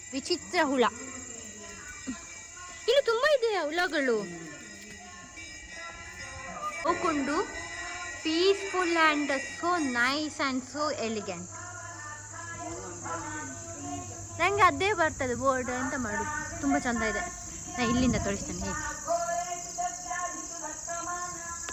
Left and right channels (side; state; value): both; identical; correlation 1.00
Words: ವಿಚಿತ್ರ ಹುಳ. ಇಲ್ಲಿ ತುಂಬಾ ಇದೆ ಹುಳಗಳು. ಹೋಗ್ಕೊಂಡು peaceful and so nice and so elegant. ನನಗೆ ಅದೇ ಬರ್ತದೆ ಬೋರ್ಡ್, ಎಂತ ಮಾಡೋದು. ತುಂಬ ಚಂದ ಇದೆ. ನಾನು ಇಲ್ಲಿಂದ ತೋರಿಸ್ತೇನೆ ಹೇಗೆ